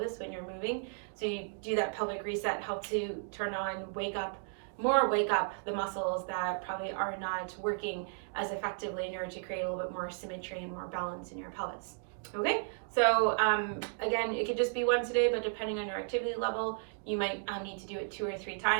when you're moving. So you do that pelvic reset, help to turn on, wake up the muscles that probably are not working as effectively in order to create a little bit more symmetry and more balance in your pelvis. Okay, so again, it could just be once a day, but depending on your activity level, you might need to do it 2 or 3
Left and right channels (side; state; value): left; silent; digital silence